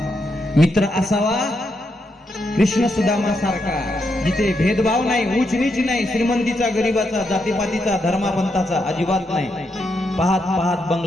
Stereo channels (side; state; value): both; normal; correlation 0.81